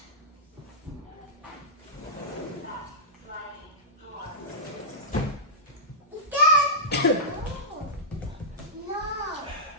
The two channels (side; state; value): both; normal; correlation -0.12